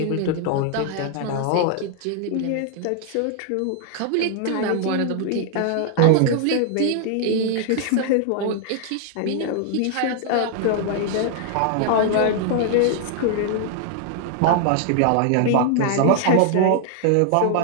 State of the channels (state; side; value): different; both; correlation 0.00